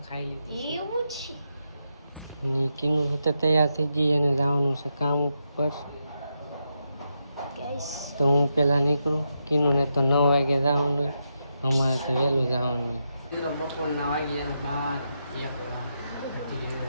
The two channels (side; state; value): both; inverted; correlation -0.84